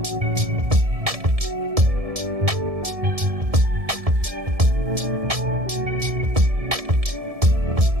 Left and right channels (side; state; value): left; late; 1.7 ms